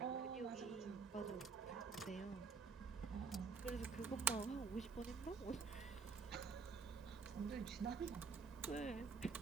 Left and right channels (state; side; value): quieter; left; 5.1 dB